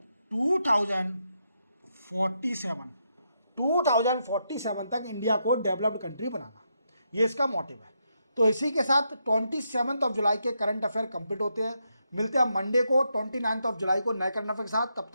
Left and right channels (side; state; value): both; inverted; correlation -0.81